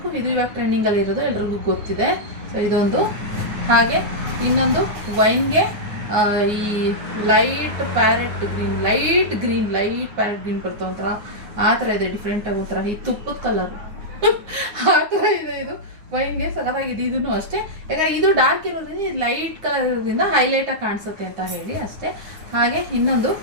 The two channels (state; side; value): late; left; 9.5 ms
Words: ಇದು ಇವಾಗ ಟ್ರೆಂಡಿಂಗ್ ಅಲ್ಲಿ ಇರೋದು, ಎಲ್ರಿಗೂ ಗೊತ್ತಿದೆ. ಸೊ ಇದೊಂದು. ಹಾಗೆ ಇನ್ನೊಂದು ವೈನ್ಗೆ ಈ light parrot green light parrot green ಬರ್ತವೆ ಒಂಥರ, ಆ ಥರ ಇದೆ. ಡಿಫ್ರೆಂಟ್ ಆಗಿ ಒಂಥರ ಈ ತುಪ್ಪದ ಕಲರ್ ಆ ಥರ ಇದೆ. ಇದು ವೈನ್ಗೆ ಸಖತ್ತಾಗಿದೆ. ಇದನ್ನು ಅಷ್ಟೇ, ಯಾಕಂದ್ರೆ ಇದು ಡಾರ್ಕ್ ಇರೋದ್ರಿಂದ, ಇದು ಲೈಟ್ ಕಲರ್ ಇರೋದ್ರಿಂದ ಹೈಲೈಟ್ ಆಗಿ ಕಾಣಿಸುತ್ತೆ ಅಂತ ಹೇಳಿ ಅಷ್ಟೇ. ಹಾಗೆ ಇನ್ನೊಂದು